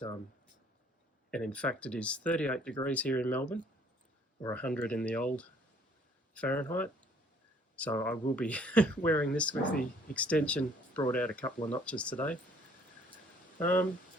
and in fact it is 38 degrees here in Melbourne, or 100 in the old Fahrenheit, so I will be wearing this with the extension brought out a couple of notches today.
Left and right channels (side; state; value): both; normal; correlation 0.59